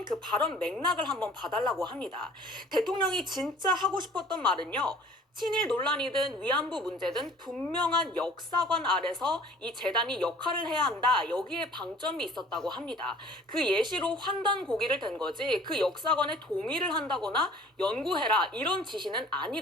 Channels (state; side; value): normal; both; correlation 0.50